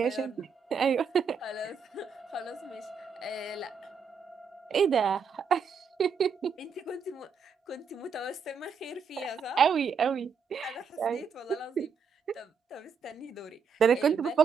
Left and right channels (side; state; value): left; quieter; 5.8 dB